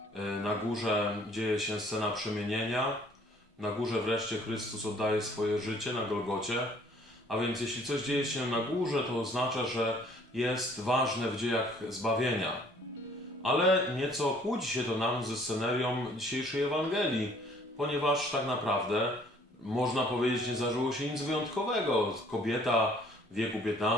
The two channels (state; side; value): normal; both; correlation 0.58